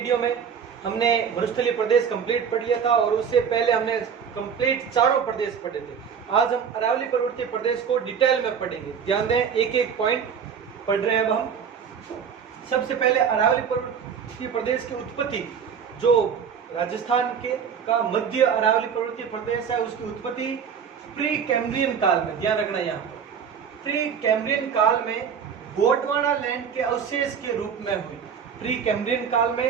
में हमने मरुस्थलीय प्रदेश कंप्लीट पढ़ लिया था और उससे पहले हमने कंप्लीट चारों प्रदेश पढ़े थे। आज हम अरावली पर्वतीय प्रदेश को डिटेल में पढ़ेंगे। ध्यान दें, एक एक पॉइंट पढ़ रहे हैं अब हम। सबसे पहले अरावली पर्वतीय प्रदेश की उत्पत्ति, जो राजस्थान के का मध्य अरावली पर्वतीय प्रदेश है, उसकी उत्पत्ति प्री कैम्ब्रियन काल में, ध्यान रखना यहाँ पर, प्री कैम्ब्रियन काल में गोंडवाना लैंड के अवशेष के रूप में हुई। प्री कैम्ब्रियन काल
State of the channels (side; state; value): left; quieter; 7.1 dB